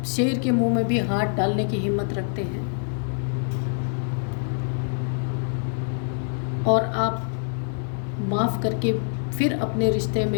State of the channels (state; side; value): silent; right; 59 dB below the other